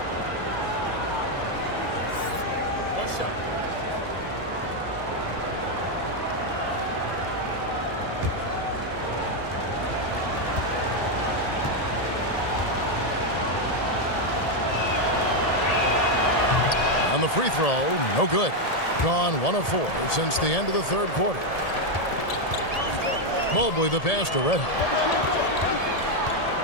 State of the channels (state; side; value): late; right; 1.7 ms